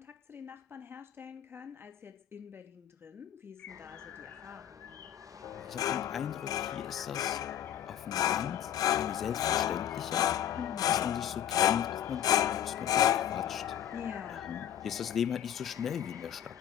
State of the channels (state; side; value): quieter; right; 10.4 dB